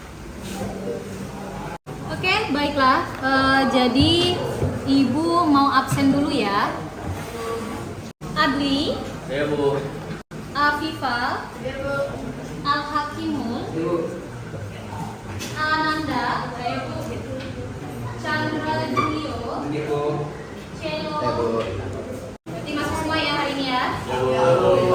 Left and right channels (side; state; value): both; identical; correlation 1.00